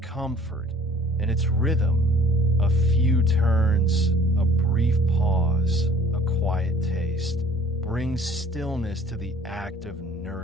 and its rhythm, a few turns, a brief pause, a quiet taste, brings stillness to the act of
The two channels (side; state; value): both; normal; correlation 0.52